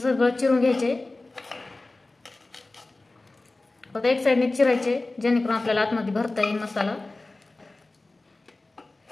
चिरून घ्यायचे. फक्त एक साईडने चिरायचे, जेणेकरून आपल्याला आतमध्ये भरता येईल मसाला.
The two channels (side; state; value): right; quieter; 3.1 dB